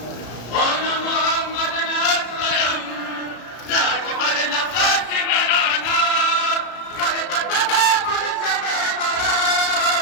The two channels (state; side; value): late; right; 34 ms